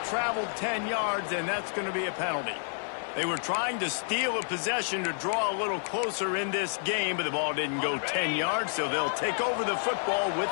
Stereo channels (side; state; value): right; silent; 58 dB below the other